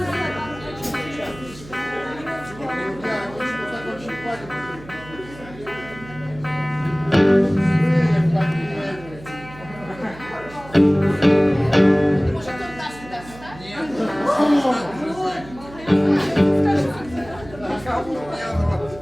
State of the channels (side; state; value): right; noise; hum, 18 dB below the sound